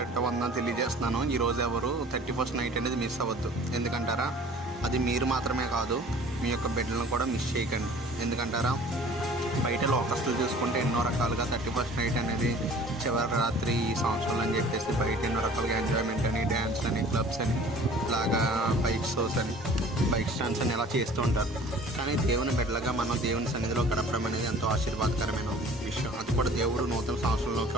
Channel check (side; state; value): both; normal; correlation 0.48